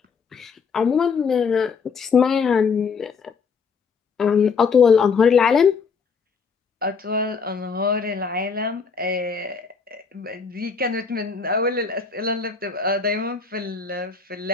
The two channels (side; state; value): right; quieter; 5.5 dB